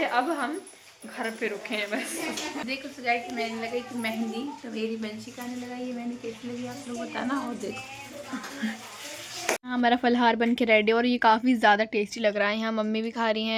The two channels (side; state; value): both; identical; correlation 1.00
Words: अब हम घर पे रुके हैं बस। देखो सजाई की मैंने लगाई कि मेहंदी, तो मेरी बंशी का ने लगाई है, मैंने कैसी लगी आप लोग बताना। और देखो हमारा फलहार बन के रेडी, और ये काफ़ी ज़्यादा टेस्टी लग रहा है। यहाँ मम्मी भी खा रही